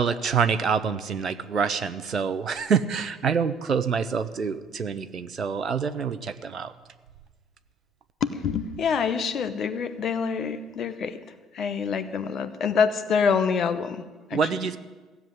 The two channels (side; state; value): both; normal; correlation 0.58